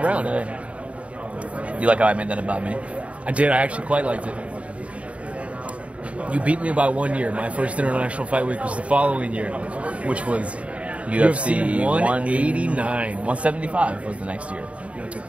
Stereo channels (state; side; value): late; left; 0.064 ms